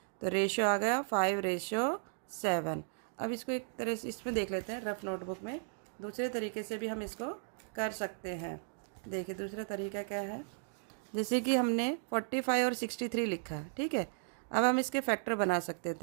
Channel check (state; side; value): silent; left; digital silence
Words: तो रेशियो आ गया 5:7। अब इसको एक तरह से इसमें देख लेते हैं रफ नोटबुक में, दूसरे तरीके से भी हम इसको कर सकते हैं। देखिए दूसरा तरीका क्या है, जैसे कि हमने 45 और 63 लिखा है, ठीक है। अब हम इसके फैक्टर बना सकते